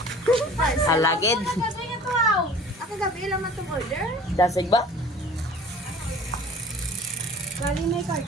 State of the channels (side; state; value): both; normal; correlation 0.46